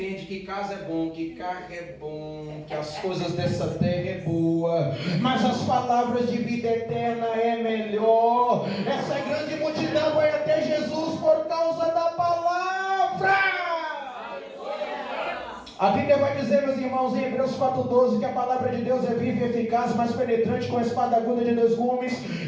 que casa é bom, que carro é bom, que as coisas dessa terra é boa, mas as palavras de vida eterna é melhor. Essa grande multidão vai até Jesus por causa da palavra. A Bíblia vai dizer, meus irmãos, em Hebreus 4,12, que a palavra de Deus é viva e eficaz, mais penetrante com a espada aguda de 2 gumes.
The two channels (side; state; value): both; identical; correlation 1.00